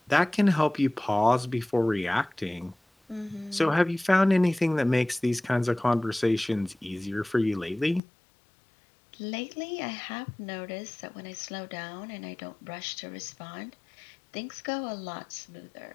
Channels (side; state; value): right; drops out; at 8.0 s